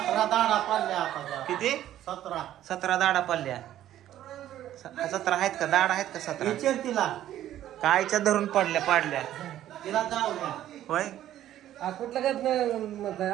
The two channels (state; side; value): quieter; left; 12.4 dB